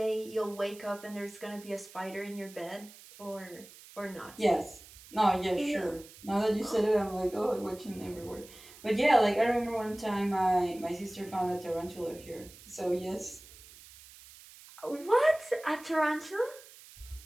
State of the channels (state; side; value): noise; right; hiss, 20 dB below the sound